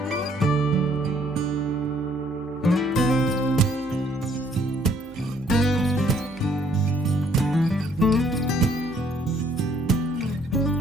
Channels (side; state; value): both; normal; correlation 0.64